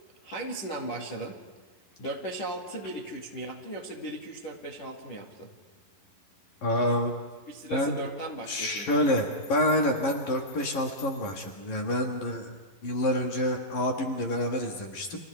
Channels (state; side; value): late; right; 11 ms